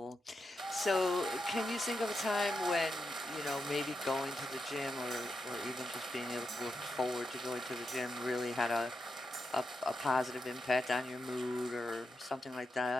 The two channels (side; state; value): both; normal; correlation 0.86